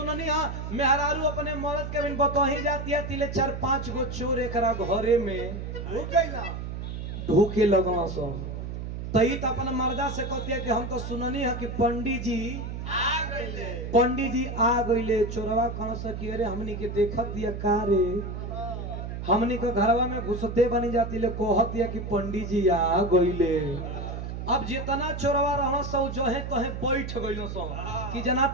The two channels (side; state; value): right; noise; hum, 6 dB below the sound